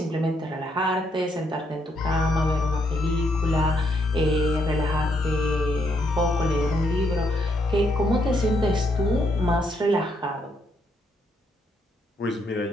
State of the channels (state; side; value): normal; both; correlation 0.75